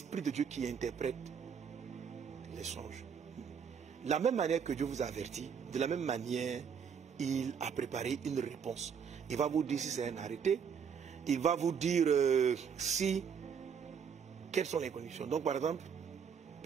de Dieu qui interprète les songes. La même manière que Dieu vous avertit, de la même manière, il a préparé une réponse. Il va vous dire si c'est un arrêté, il va vous dire quelles sont les conditions. Donc par exemple,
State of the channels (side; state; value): left; quieter; 7.0 dB